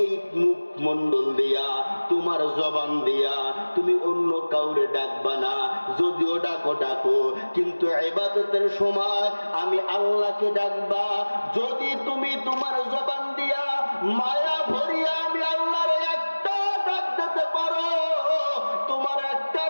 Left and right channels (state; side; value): inverted; both; correlation -1.00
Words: মুখমণ্ডল দিয়া, তোমার জবান দিয়া তুমি অন্য কাউরে ডাকবা না। যদিও ডাকো ডাকো, কিন্তু ইবাদতের সময় আমি আল্লাহকে ডাকবা। যদি তুমি তোমার জবান দিয়া মায়া ভরিয়া আমি আল্লাহর একটা ডাক দিতে পারো, তোমার একটা